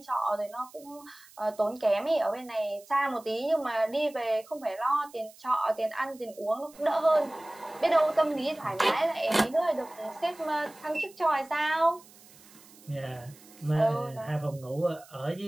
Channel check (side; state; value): right; noise; hiss, 23 dB below the sound